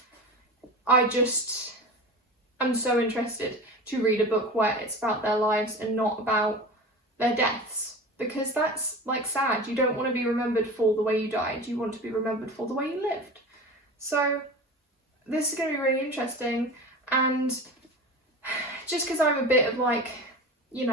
I'm so interested to read a book where it's about their lives and not about their deaths, because that's, like, sad. You don't want to be remembered for the way you died, you want to be remembered for the way you lived. So this is going to be really interesting, and just because I'm a bit of, like, you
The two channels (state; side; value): normal; both; correlation 0.32